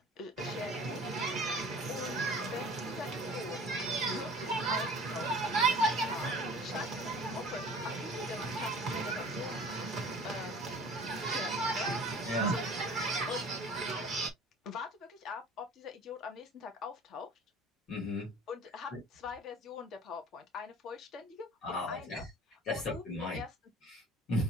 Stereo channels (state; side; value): normal; both; correlation 0.45